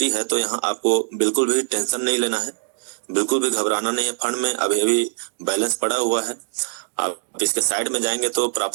है। तो यहाँ आपको बिल्कुल भी टेंशन नहीं लेना है, बिल्कुल भी घबराना नहीं है। फंड में अभी अभी बैलेंस पड़ा हुआ है। आप इसके साइड में जाएंगे तो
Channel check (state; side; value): silent; left; digital silence